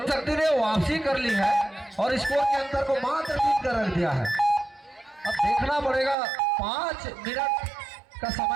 शक्ति ने वापसी कर ली है और स्कोर के अंतर को मात्र 3 कर रख दिया है। अब देखना पड़ेगा 5 मिनट का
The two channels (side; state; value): left; drops out; at 6.2 s